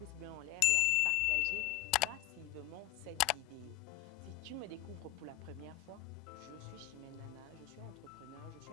bleu en l'air et à partager massivement cette vidéo. Si tu me découvres pour la première fois, je suis Chimène Nana, je suis entrepreneur, je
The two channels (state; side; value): quieter; right; 14.6 dB